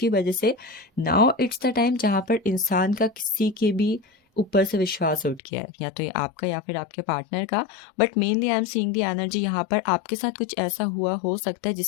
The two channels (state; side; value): drops out; right; at 5.4 s